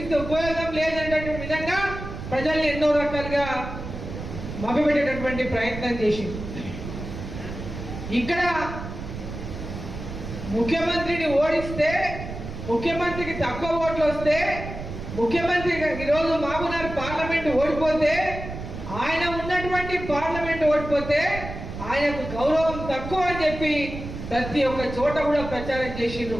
ఉపయోగం లేదనేటువంటి విధంగా ప్రజల్ని ఎన్నో రకాలుగా మభ్యపెట్టేటటువంటి ప్రయత్నం చేసింది. ఇక్కడ ముఖ్యమంత్రిని ఓడిస్తే, ముఖ్యమంత్రికి తక్కువ ఓట్లు వస్తే, ముఖ్యమంత్రి ఈరోజు మహబూబ్నగర్ పార్లమెంట్ ఓడిపోతే, ఆయన ఉన్నటువంటి పార్లమెంట్ ఓడిపోతే ఆయనకు గౌరవం తక్కువ అని చెప్పి ప్రతి ఒక్క చోట కూడా ప్రచారం చేసిండ్రు.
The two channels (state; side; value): noise; right; rumble, 9 dB below the sound